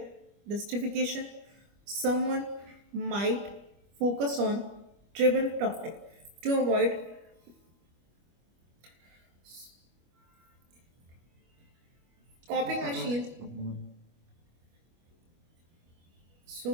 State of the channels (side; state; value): left; late; 25 ms